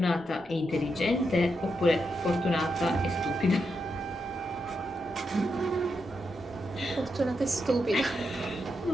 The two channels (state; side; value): normal; both; correlation 0.84